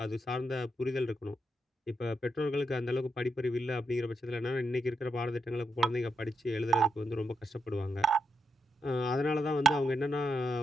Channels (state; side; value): normal; both; correlation 0.82